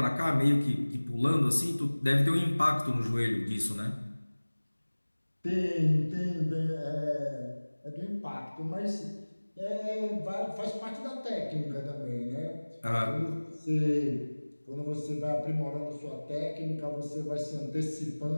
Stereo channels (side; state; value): both; inverted; correlation -1.00